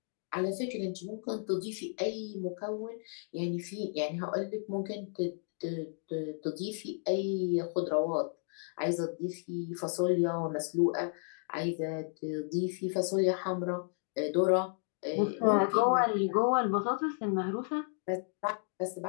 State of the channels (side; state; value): right; silent; 56 dB below the other